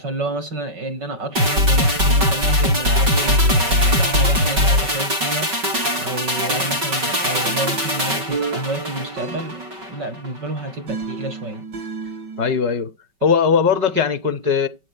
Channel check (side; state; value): left; late; 5.3 ms